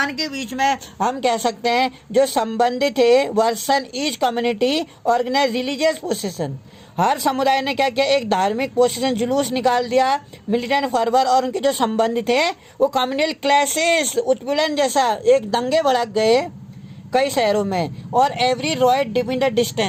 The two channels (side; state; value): both; identical; correlation 1.00